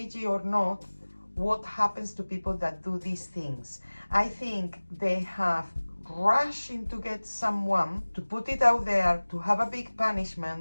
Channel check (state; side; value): inverted; both; correlation -1.00